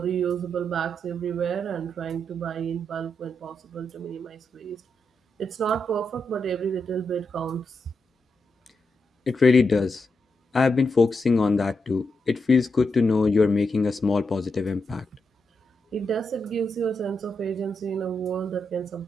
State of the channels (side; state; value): both; normal; correlation 0.84